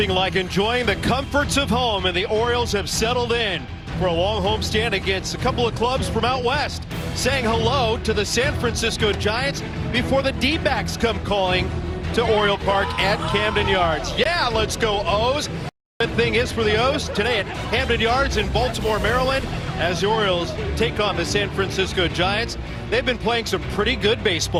like enjoying the comforts of home, and the Orioles have settled in for a long homestand against a couple of clubs from out west, saying hello to the San Francisco Giants before the D-backs come calling to Oriole Park at Camden Yards. Yeah, let's go O's. The thing is for the O's today at Camden Yards in Baltimore, Maryland, as the Orioles take on the San Francisco Giants. They've been playing some pretty good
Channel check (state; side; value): identical; both; correlation 1.00